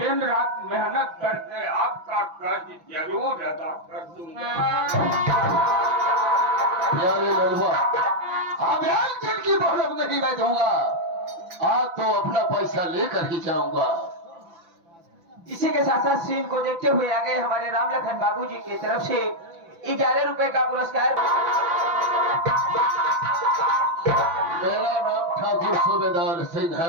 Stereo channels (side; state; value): left; late; 5.9 ms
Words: रात मेहनत करके आपका कर्ज जरूर अदा कर दूंगा। प्यारे लड़वा, अब एक दिन की मोहलत नहीं मैं दूंगा, आज तो अपना पैसा लेकर ही जाऊंगा। इसी के साथ साथ सीन को देखते हुए आ गए हमारे राम लखन बाबूजी की तरफ से 11 रुपए का पुरस्कार। मेरा नाम ठाकुर सूबेदार सिंह